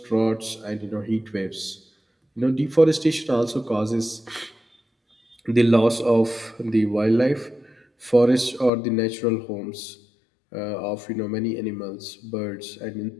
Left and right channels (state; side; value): drops out; right; at 8.7 s